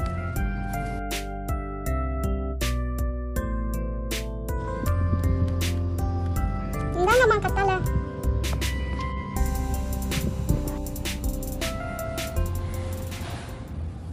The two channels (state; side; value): identical; both; correlation 1.00